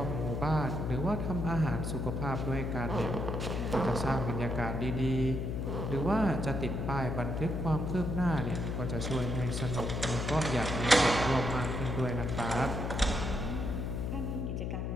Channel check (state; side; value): noise; left; hum, 2 dB below the sound